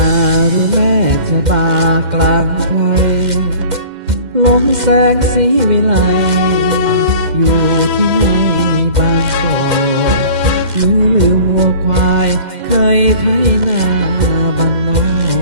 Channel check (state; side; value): late; left; 2.1 ms